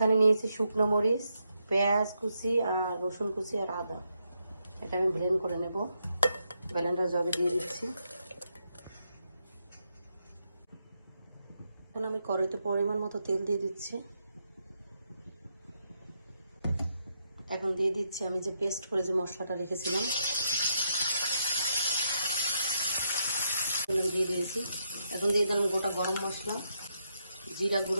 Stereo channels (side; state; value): both; inverted; correlation -0.81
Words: নিয়েছি শুকনো মরিচ, পেঁয়াজ কুচি আর রসুন কুচি আর আদা। এটা আমি ব্লেন্ড করে নেব, ব্লেন্ডার জগে দিয়ে দিচ্ছি। এখন আমি কড়াইতে পরিমাণ মতো তেল দিয়ে দিচ্ছি। এখন দিয়ে দিচ্ছি আমি যে পেস্ট করে যে মশলাটা রেখেছিলাম দিয়ে দিয়েছি। এখন দিয়ে দিলাম গোটা গরম মশলা, জিরা